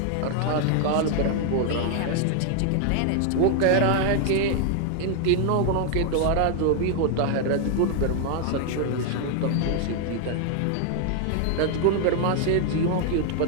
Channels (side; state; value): both; different; correlation 0.00